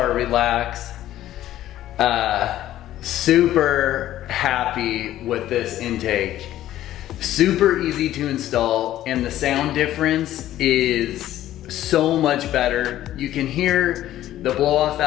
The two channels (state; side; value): quieter; right; 13.3 dB